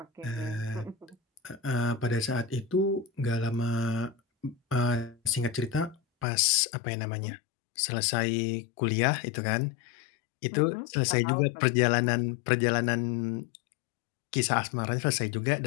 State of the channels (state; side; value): drops out; right; at 6.2 s